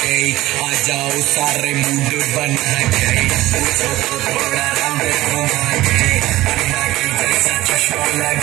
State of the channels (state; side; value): quieter; left; 16.9 dB